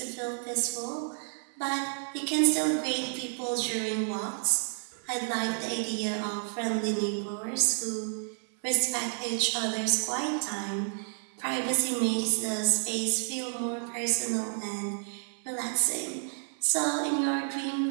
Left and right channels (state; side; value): silent; left; 58 dB below the other